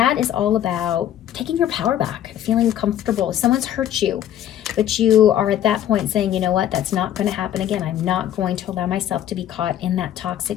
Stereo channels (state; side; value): quieter; right; 11.2 dB